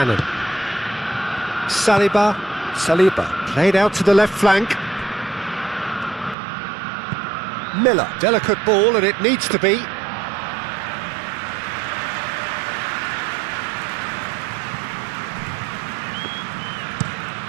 Saliba, played out to the left flank. Miller, delicate ball, and it needs to be.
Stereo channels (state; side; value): drops out; left; at 6.4 s